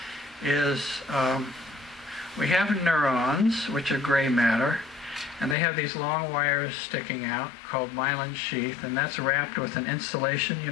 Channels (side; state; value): right; drops out; at 5.6 s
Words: is we have neurons, which are gray matter, and they have these long wires sticking out called myelin sheath, and that's wrapped with an insulation. You